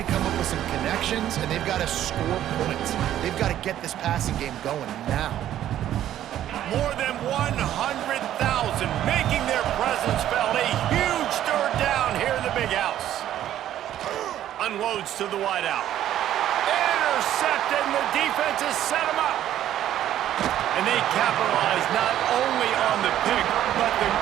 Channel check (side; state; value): left; quieter; 11.9 dB